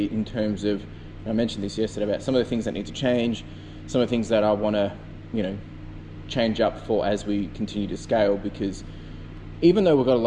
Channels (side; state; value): both; identical; correlation 1.00